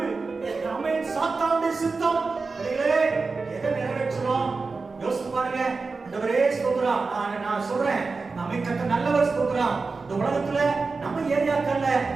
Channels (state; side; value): quieter; left; 4.2 dB